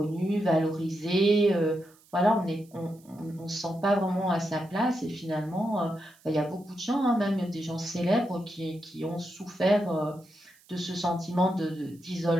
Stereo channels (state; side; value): noise; right; hiss, 29 dB below the sound